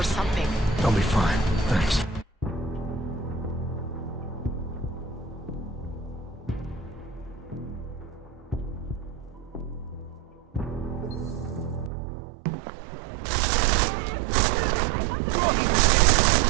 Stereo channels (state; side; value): drops out; left; at 11.9 s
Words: something... I'll be fine, thanks.